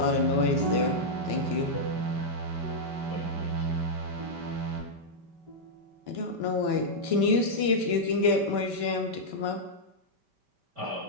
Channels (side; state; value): left; late; 5.1 ms